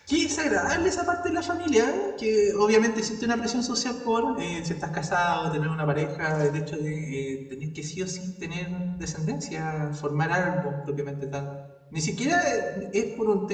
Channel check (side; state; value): both; identical; correlation 1.00